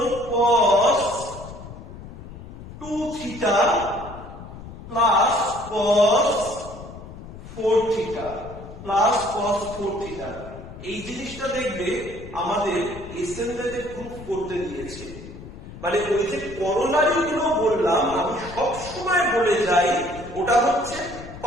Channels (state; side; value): noise; left; rumble, 14 dB below the sound